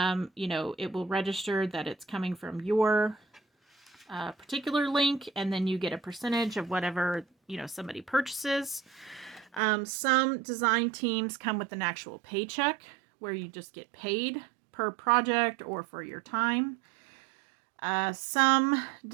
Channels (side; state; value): left; drops out; at 9.6 s